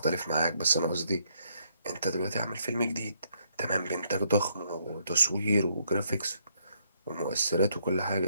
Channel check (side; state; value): both; inverted; correlation -0.73